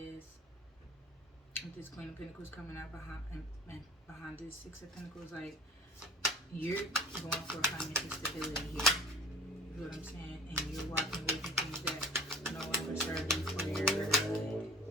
with this Queen of Pentacles coming out behind this Six of Pentacles, like, you're going for financial stability here. You know what I'm saying? And you're walking away from things that no longer serve you for your good.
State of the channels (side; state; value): both; normal; correlation 0.45